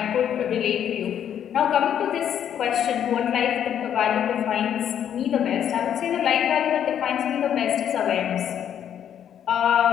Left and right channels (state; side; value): quieter; right; 9.5 dB